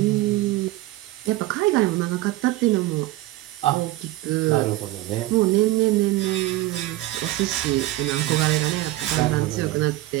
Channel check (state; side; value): quieter; left; 16.9 dB